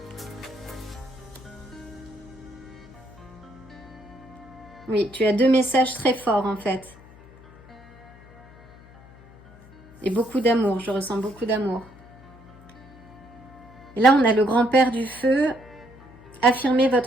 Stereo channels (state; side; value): noise; left; hum, 22 dB below the sound